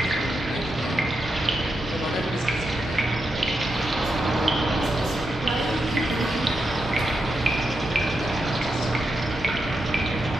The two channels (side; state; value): both; normal; correlation 0.86